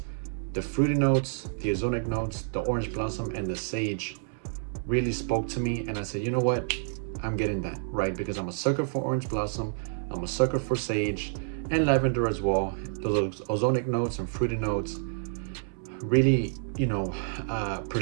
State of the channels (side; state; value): left; silent; 59 dB below the other